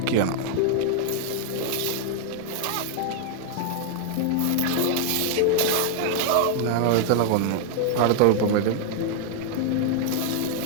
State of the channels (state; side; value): different; both; correlation 0.00